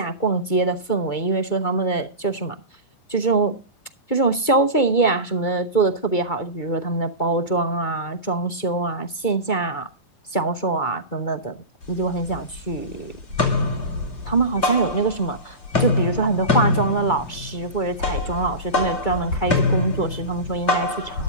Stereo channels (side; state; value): right; late; 2.3 ms